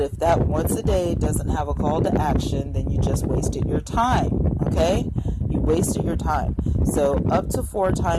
if that once a day doesn't have a call to action, then you just wasted your time, okay? You wasted your time. So up to 4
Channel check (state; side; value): identical; both; correlation 1.00